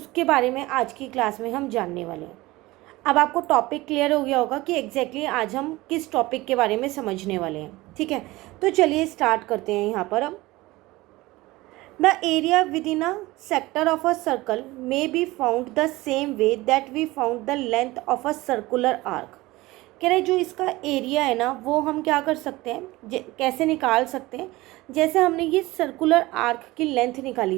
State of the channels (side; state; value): left; quieter; 19.8 dB